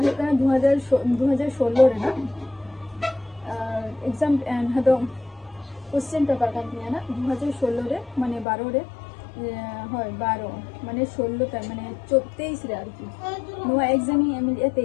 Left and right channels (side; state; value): right; drops out; at 8.5 s